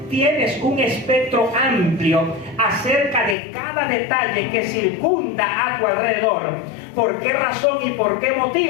tienes un espectro amplio acerca de cada detalle que circunda a tu alrededor. ¿Por qué razón y por qué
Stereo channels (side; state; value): right; drops out; at 3.4 s